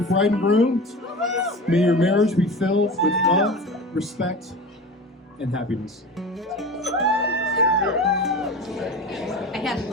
bride and groom. May your marriage be filled with love, respect, and happiness. I hadn't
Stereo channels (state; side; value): normal; both; correlation 0.32